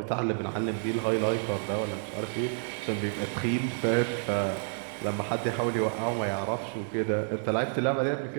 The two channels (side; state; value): left; silent; digital silence